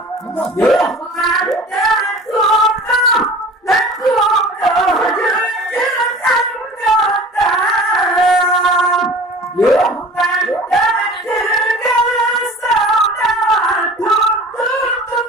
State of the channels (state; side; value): normal; both; correlation 0.42